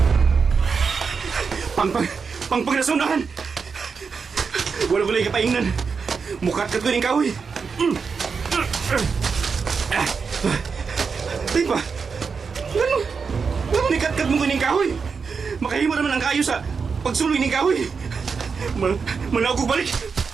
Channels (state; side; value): quieter; left; 5.4 dB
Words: Pangpang nasunahan! Wala ko lang kapaingnan. Mukat ka ko ng kahoy. Tay pa! Ano nikat-kat mo ko ng kahoy? Makahimo naman ang kayo sa pagsuloy ng kahoy. Manaw ko balik!